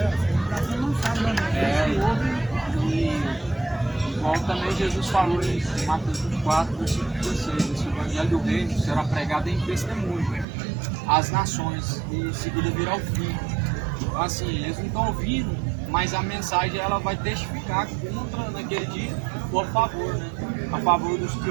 Igual também Jesus falou em Mateus 24, versículo 16, esse evangelho do reino será pregado em testemunho às nações e em seguida virá o fim. Então, assim, eles não estão ouvindo, mas a mensagem ela vai testificar contra naquele dia ou a favor, né? A favor dos que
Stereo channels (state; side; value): drops out; left; at 10.5 s